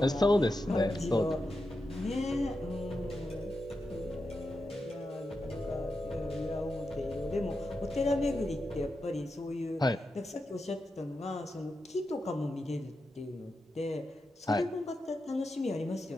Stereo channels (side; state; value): both; normal; correlation 0.89